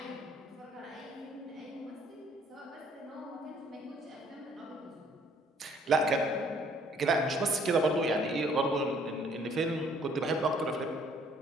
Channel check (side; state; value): both; normal; correlation 0.61